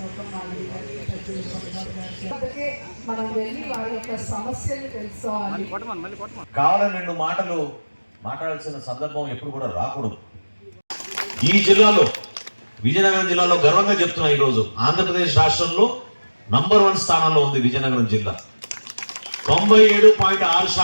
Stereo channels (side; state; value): both; inverted; correlation -1.00